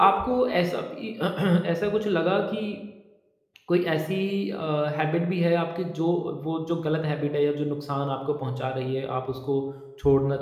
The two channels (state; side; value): identical; both; correlation 1.00